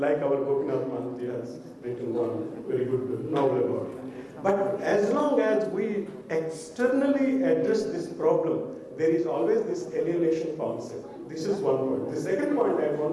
our Gopinath Mahanti has written one very good novel about it. But as long as we externally address this problem, there is always this alienation concept. This is one point. The second point I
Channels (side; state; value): both; identical; correlation 1.00